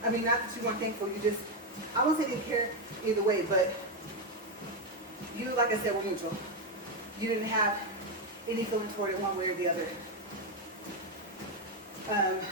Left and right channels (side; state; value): both; normal; correlation 0.05